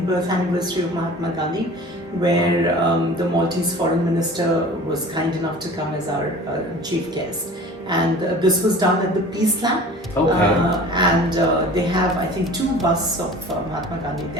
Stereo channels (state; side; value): normal; both; correlation 0.42